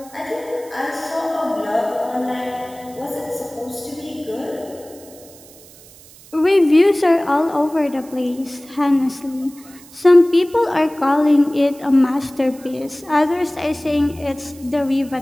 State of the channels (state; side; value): noise; right; hiss, 22 dB below the sound